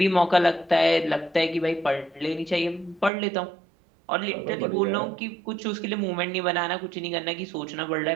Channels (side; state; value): left; drops out; at 3.1 s